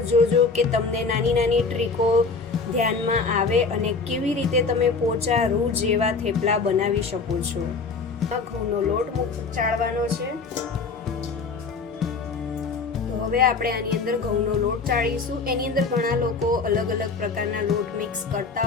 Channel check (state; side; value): quieter; right; 4.5 dB